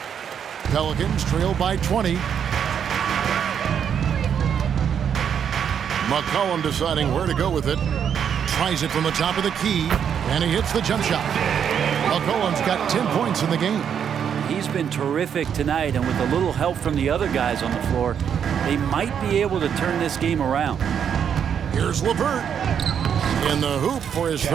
Pelicans trail by 20. McCollum deciding where to go with it. Tries it from the top of the key, and he hits the jump shot. McCollum's got 10 points in the game. He's been terrific tonight, and with a little help from the other guys on the floor, they might be able to turn this game around. Here's LeVert in the hoop for his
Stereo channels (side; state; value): left; quieter; 8.1 dB